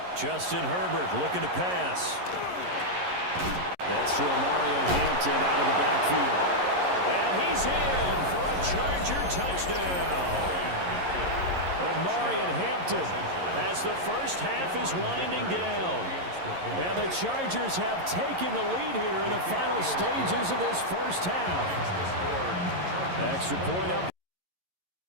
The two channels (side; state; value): left; late; 11 ms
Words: Justin Herbert looking to pass. That's to Mario Hampton out of the backfield. And he's in for a Charger touchdown. Omarion Hampton as the first half is winding down. And the Chargers have taken the lead here in the final stages of this first half. Extra point up.